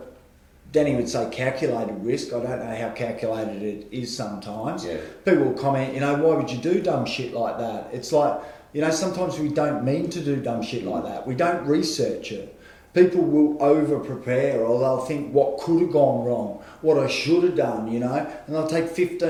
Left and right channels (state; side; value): identical; both; correlation 1.00